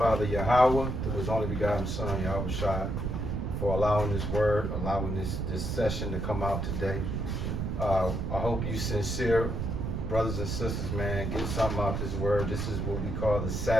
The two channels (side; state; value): right; noise; rumble, 2 dB below the sound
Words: Yahweh, through His only begotten Son, Yahweh Shai, for allowing this word, allowing this session to come out today. I hope you sincere brothers and sisters, man, get something out this word. This is what we call the